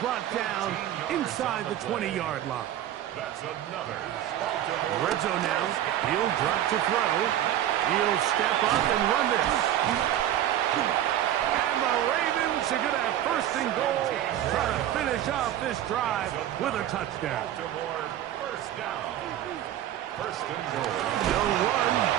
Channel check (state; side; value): quieter; left; 11.9 dB